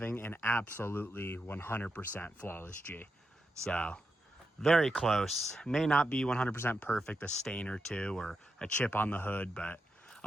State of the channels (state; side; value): normal; both; correlation 0.86